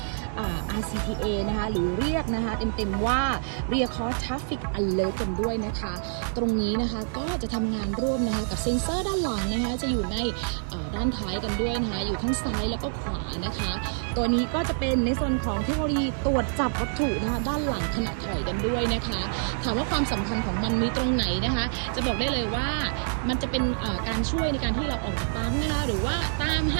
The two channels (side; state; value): left; silent; 60 dB below the other